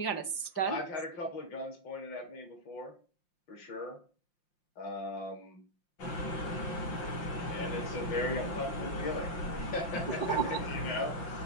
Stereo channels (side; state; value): right; late; 5.7 ms